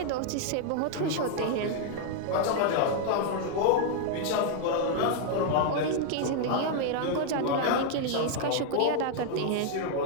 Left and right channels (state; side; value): different; both; correlation 0.00